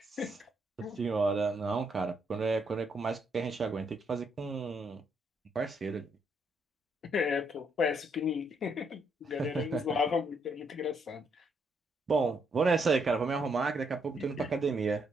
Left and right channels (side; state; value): both; normal; correlation 0.74